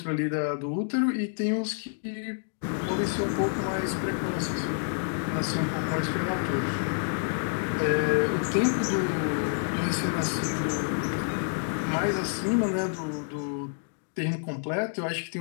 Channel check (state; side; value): silent; right; digital silence